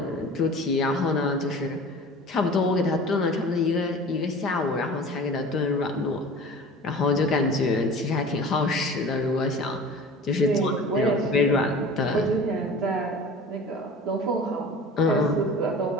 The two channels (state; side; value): normal; both; correlation 0.40